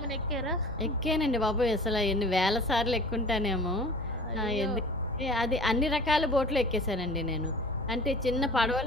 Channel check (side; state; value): both; normal; correlation 0.43